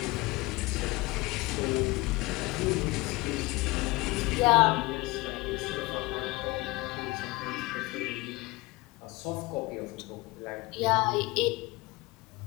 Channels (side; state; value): right; quieter; 22.2 dB